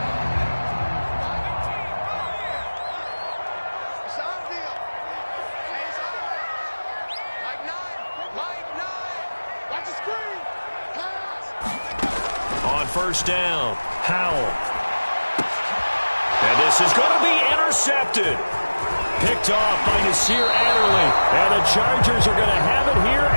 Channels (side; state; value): both; inverted; correlation -1.00